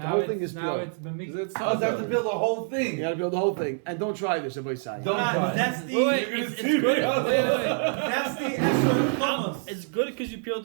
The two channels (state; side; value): silent; left; digital silence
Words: whole thing is now peeled. it's bemix. Oh, so I have to build the whole You thing. gotta build the whole thing, and don't try this. Everybody say. Don't try. That's the It's good. that's the esrog hummus. It's good because you peeled